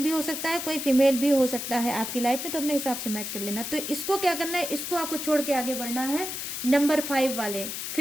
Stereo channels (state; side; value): noise; left; hiss, 5 dB below the sound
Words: भी हो सकता है, कोई फीमेल भी हो सकता है आपकी लाइफ में, तो अपने हिसाब से मैच कर लेना। तो इसको क्या करना है, इसको आपको छोड़ के आगे बढ़ना है। नंबर 5 वाले